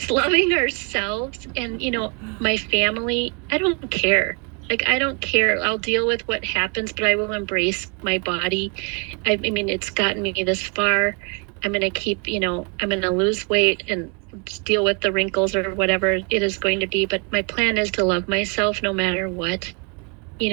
loving ourselves and, you know, my family. I don't care. I don't care. I'll deal with what happens, but I will embrace my body. I mean, it's gotten me this far. I'm going to keep, you know, I'm going to lose weight and deal with the wrinkles or whatever it is going to be. But my plan is to love myself no matter what,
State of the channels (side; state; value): left; quieter; 34.5 dB